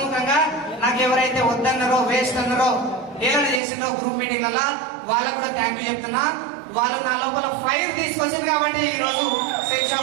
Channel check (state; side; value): drops out; left; at 3.6 s